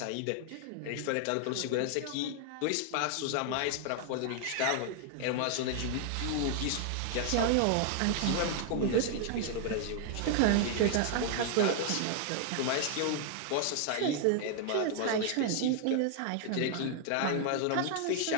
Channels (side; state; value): both; different; correlation 0.00